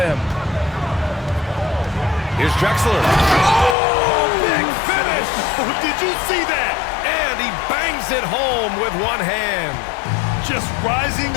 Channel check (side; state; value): right; drops out; at 3.8 s